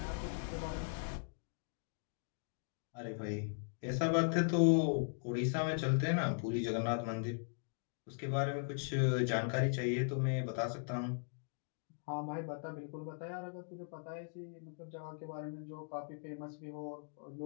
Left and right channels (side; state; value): right; silent; digital silence